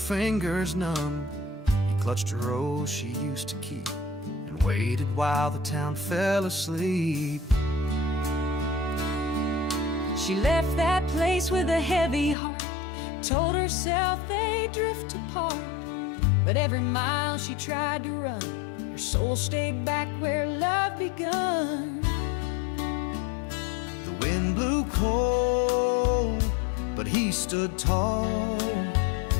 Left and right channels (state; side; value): drops out; right; at 12.4 s